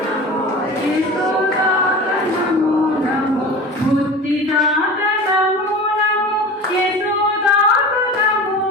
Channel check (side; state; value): both; normal; correlation 0.34